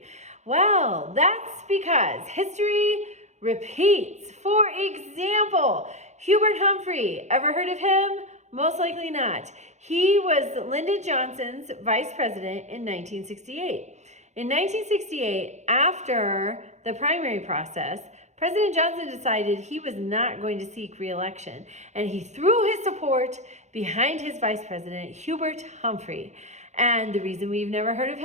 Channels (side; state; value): left; late; 0.33 ms